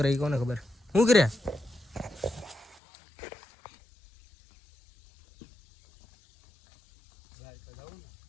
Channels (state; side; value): drops out; right; at 2.8 s